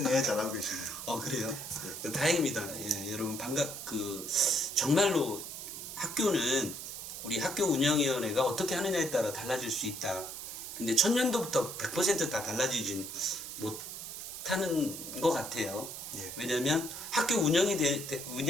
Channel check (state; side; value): noise; right; hiss, 9 dB below the sound